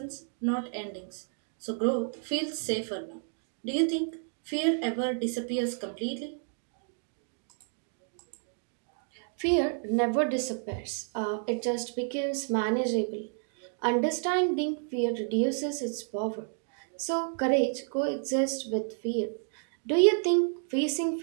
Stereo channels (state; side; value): silent; left; 57 dB below the other